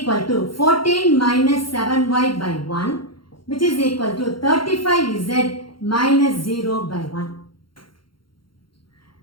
to 14 minus 7y by 1, which is equal to 35z minus 0 by 1.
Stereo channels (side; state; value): right; late; 0.73 ms